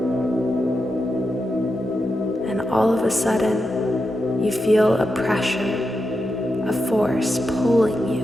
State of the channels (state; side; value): normal; both; correlation 0.87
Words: And all of a sudden, you feel a pressure, a force pulling